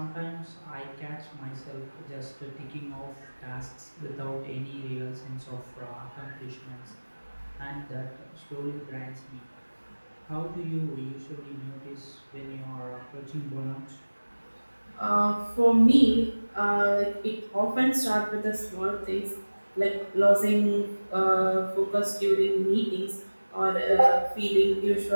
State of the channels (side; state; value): both; inverted; correlation -1.00